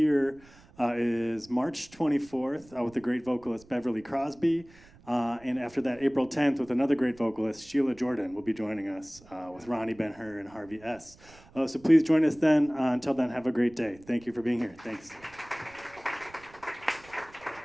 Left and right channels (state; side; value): noise; right; rumble, 25 dB below the sound